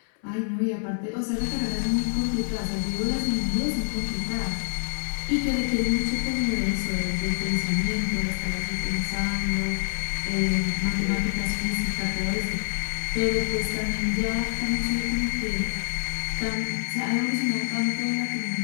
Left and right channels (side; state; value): right; silent; 61 dB below the other